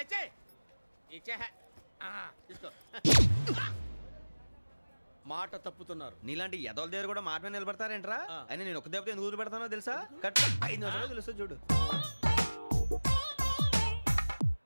ఇచ్చే తీసుకో. మాట తప్పుతున్నారు. నీలాంటి ఎదల దగ్గర కూడా మాట మీద నిలబడతారేంట్రా? అయినా నేను ఒక దెబ్బతో ఎందుకు పెడతానో తెలుసా? కరెక్ట్ 5 నిమిషాలు తెలుసు చూడు.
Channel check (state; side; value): inverted; both; correlation -1.00